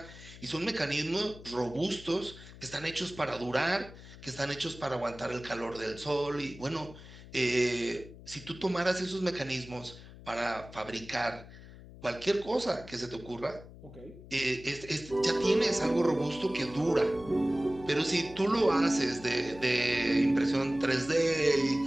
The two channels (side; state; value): left; noise; hum, 17 dB below the sound